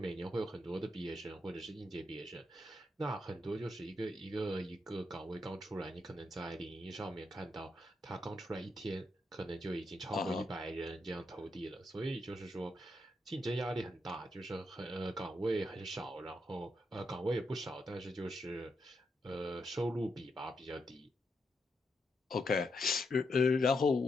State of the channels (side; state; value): both; normal; correlation 0.82